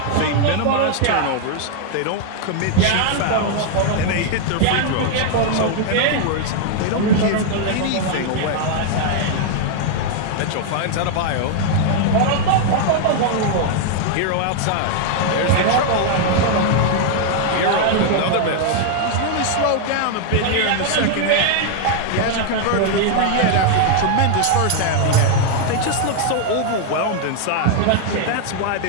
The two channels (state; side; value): different; both; correlation 0.00